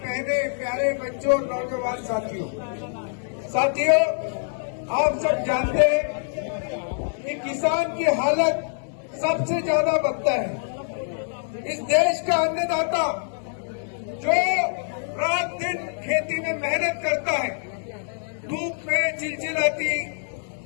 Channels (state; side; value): silent; right; digital silence